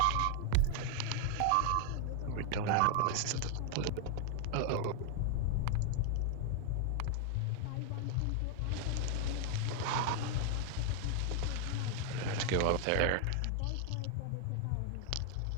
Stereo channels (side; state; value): both; different; correlation 0.00